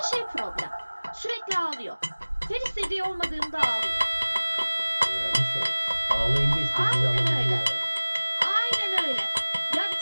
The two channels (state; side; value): inverted; both; correlation -1.00